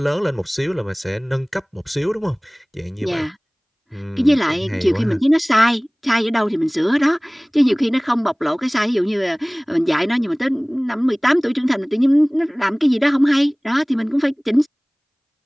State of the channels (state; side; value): identical; both; correlation 1.00